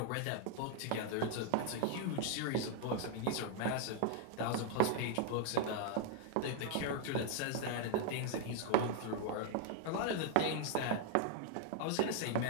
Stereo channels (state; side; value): different; both; correlation 0.00